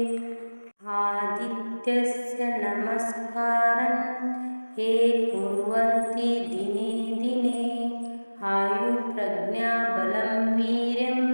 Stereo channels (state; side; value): inverted; both; correlation -1.00